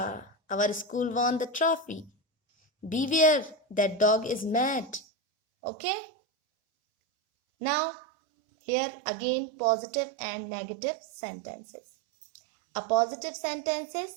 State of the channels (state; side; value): drops out; left; at 5.0 s